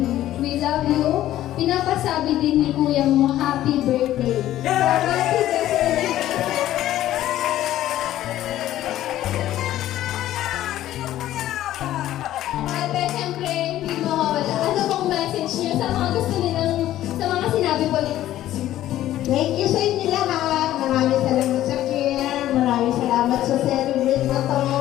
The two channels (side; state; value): right; quieter; 13.5 dB